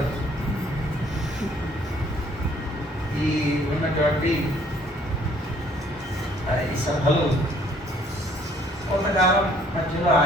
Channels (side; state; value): both; normal; correlation 0.61